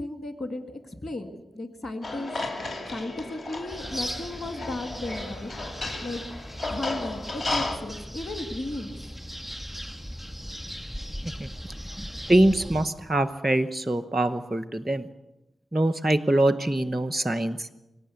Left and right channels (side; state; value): both; normal; correlation 0.92